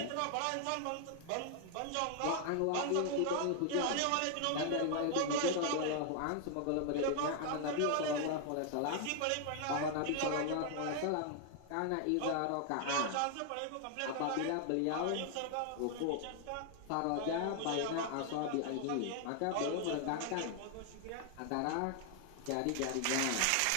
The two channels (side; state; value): both; different; correlation 0.00